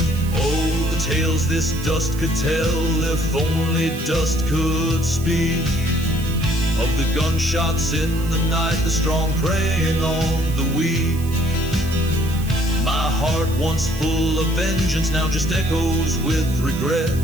Oh, the tales this dust could tell, if only dust could speak. Of the gunshots in the night, the strong preying on the weak. My heart once full of vengeance, now just echoes with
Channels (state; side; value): noise; right; hiss, 16 dB below the sound